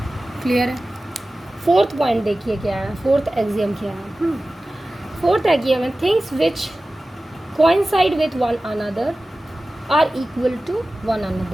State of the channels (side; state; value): both; normal; correlation 0.96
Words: clear है. Fourth point देखिए क्या है, fourth axiom क्या है. Fourth axiom है things which coincide with one another are equal to one